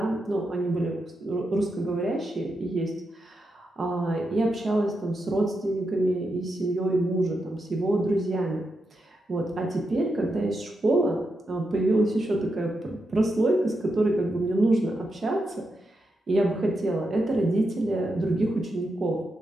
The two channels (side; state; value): both; normal; correlation 0.86